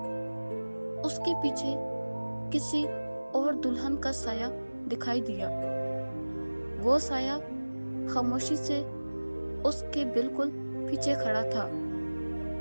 उसके पीछे किसी और दुल्हन का साया दिखाई दिया। वो साया खामोशी से उसके बिल्कुल पीछे खड़ा था।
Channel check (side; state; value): both; inverted; correlation -1.00